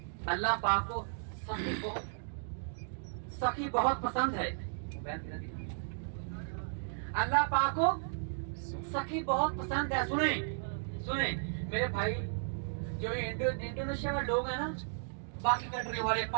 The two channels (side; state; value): left; silent; digital silence